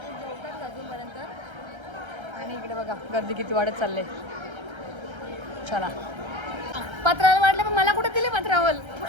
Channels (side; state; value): left; late; 1.3 ms